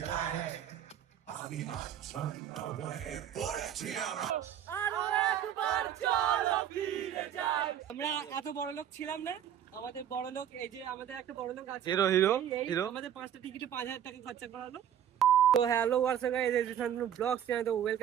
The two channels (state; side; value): quieter; left; 9.9 dB